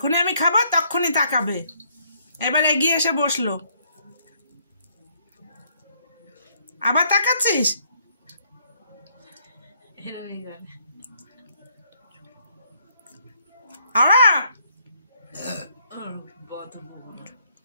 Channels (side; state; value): both; inverted; correlation -0.68